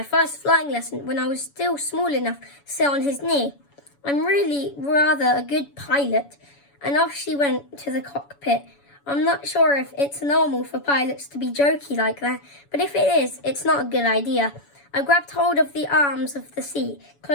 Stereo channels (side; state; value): right; late; 7.1 ms